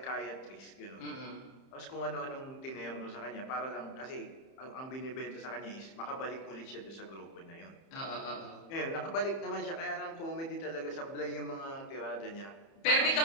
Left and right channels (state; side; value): late; right; 30 ms